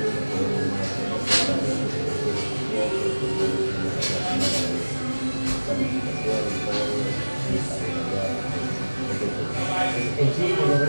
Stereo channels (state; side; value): inverted; both; correlation -1.00